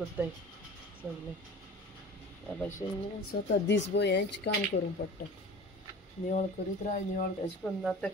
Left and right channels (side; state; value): both; normal; correlation 0.39